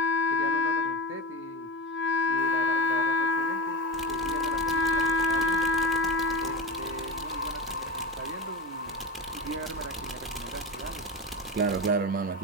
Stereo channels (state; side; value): normal; both; correlation 0.23